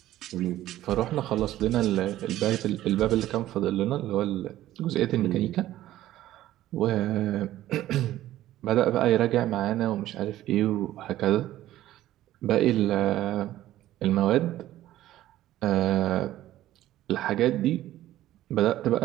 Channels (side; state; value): left; quieter; 14.1 dB